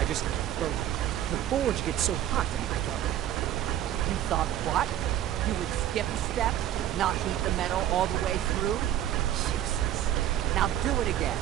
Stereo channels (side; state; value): left; quieter; 12.0 dB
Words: Well, the forge gets so hot in my thought. You thought what? You would skip steps, not heat the metal all the way through? Jesus. Now do it again.